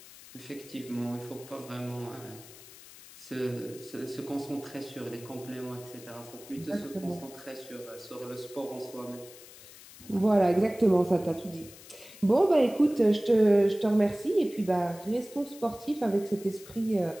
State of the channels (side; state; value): left; noise; hiss, 19 dB below the sound